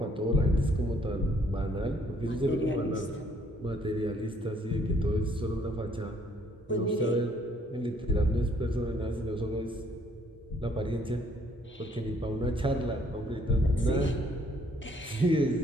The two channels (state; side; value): normal; both; correlation 0.65